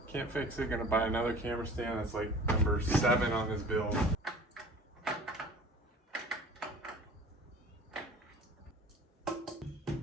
Can't fix it. Gonna buy another camera stand. That's like number 7 on this build. A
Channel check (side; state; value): both; normal; correlation 0.44